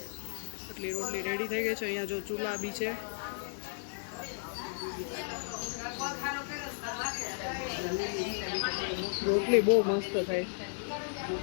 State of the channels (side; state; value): right; silent; digital silence